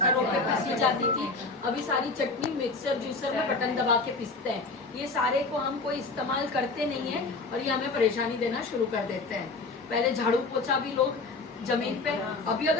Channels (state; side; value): quieter; right; 3.7 dB